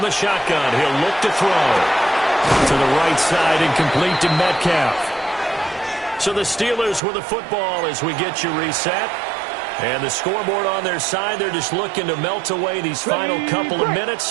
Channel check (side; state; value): left; drops out; at 7.0 s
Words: the shotgun, he'll look to throw. To the right side and complete to Metcalf. So the Steelers with the football as we get you reset. And the scoreboard on their side, they're just looking to melt away these final couple of